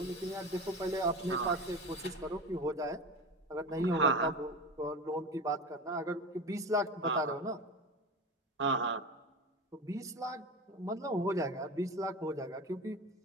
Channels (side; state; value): both; normal; correlation 0.28